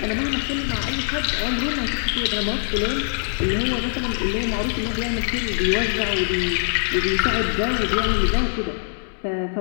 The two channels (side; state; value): right; silent; 64 dB below the other